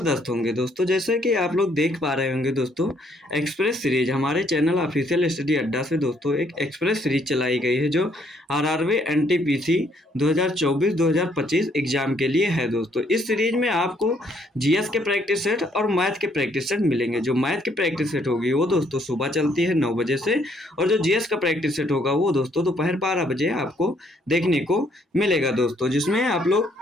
होंगे दोस्तों। जैसे कि आप लोग देख पा रहे होंगे दोस्तों, एक्सप्रेस सीरीज हमारे चैनल ऑफिशियल स्टडी अड्डा से दोस्तों एक एक्सप्रेस सीरीज चलाई गई है जो आरआरबी एनटीपीसी 2024-2025 एग्जाम के लिए है दोस्तों। इस सीरीज में आपको जीएस के प्रैक्टिस सेट और मैथ के प्रैक्टिस सेट मिलेंगे। जो मैथ की प्रैक्टिस सेट होगी वो दोस्तों सुबह चलती है 9 बजे से, और जो जीएस का प्रैक्टिस सेट होगा वो दोस्तों दोपहर 12 बजे आपको देखने को मिलेगा दोस्तों, जिसमें आप लोग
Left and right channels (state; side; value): normal; both; correlation 0.68